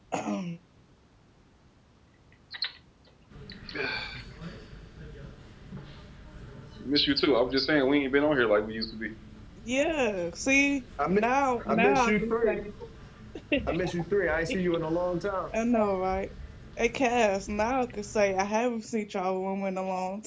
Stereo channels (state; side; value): identical; both; correlation 1.00